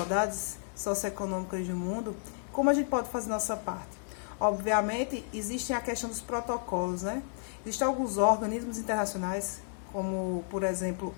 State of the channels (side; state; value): right; silent; 56 dB below the other